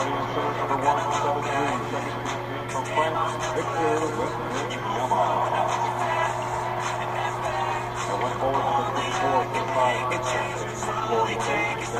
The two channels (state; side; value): identical; both; correlation 1.00